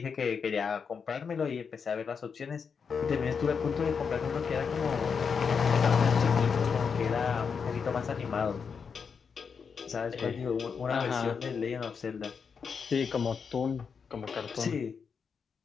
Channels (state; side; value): quieter; right; 6.0 dB